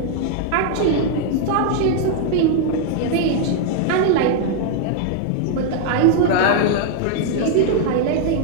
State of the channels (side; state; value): both; different; correlation 0.00